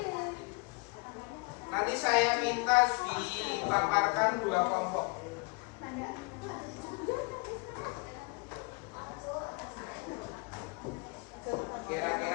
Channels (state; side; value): quieter; right; 30.9 dB